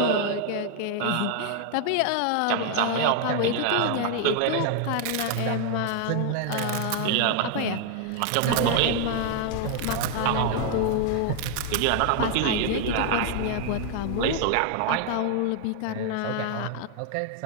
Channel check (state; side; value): different; both; correlation 0.00